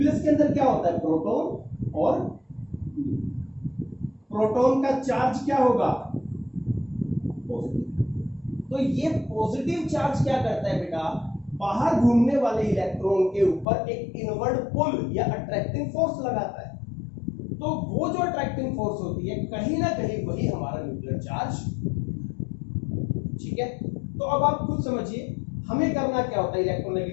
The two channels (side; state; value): right; drops out; at 13.7 s